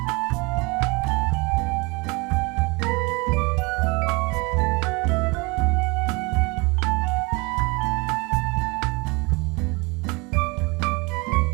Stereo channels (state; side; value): quieter; left; 27.1 dB